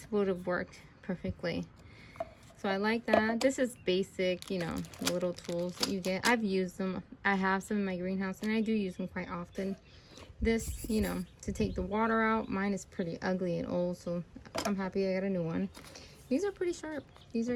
would have worked perfectly. So I like that. This is basic, you know, little tools that you get. I've used them. I have some in my greenhouse and I do use them quite often. This, you know, to take the water out. Mine is pretty ugly and old, so I'm happy I got a new one. These are pretty sharp. These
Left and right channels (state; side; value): identical; both; correlation 1.00